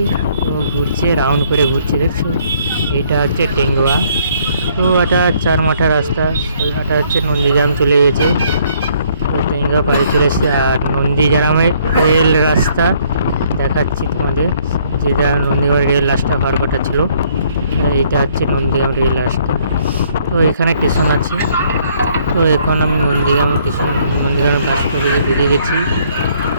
তো ঘুরছে, রাউন্ড করে ঘুরছে, দেখছো। এটা হচ্ছে টেঙ্গুয়া। তো এটা 4 মাথা রাস্তা, এটা হচ্ছে নন্দীগ্রাম চলে গেছে। তো টেঙ্গুয়া পাড়ে চলে এসেছে। আর নন্দীগ্রামের রেল রাস্তা দেখাচ্ছি তোমাদের, যেটা নন্দীগ্রাম রেল রাস্তা হওয়ার কথা ছিল, এইটা হচ্ছে নন্দীগ্রাম রেল রাস্তা। তো এখানে স্টেশন আছে। তো এখন আমি নন্দীগ্রামের বাস করে বেরিয়ে গেছি।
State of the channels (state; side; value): inverted; both; correlation -0.65